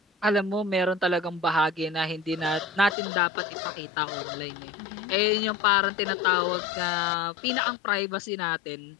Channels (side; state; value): right; drops out; at 3.0 s